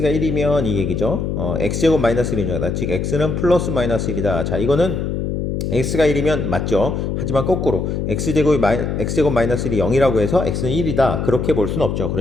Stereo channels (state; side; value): noise; left; hum, 2 dB below the sound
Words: 1이면 이 얘기죠. x제곱 마이너스 1이다. 즉 x는 플러스 마이너스 1이다. 자, 이거는 x가 1이면 맞죠. 하지만 거꾸로 x제곱 마이너스 1이 0이라고 해서 x는 1이다. 그렇게 볼 수는 없죠.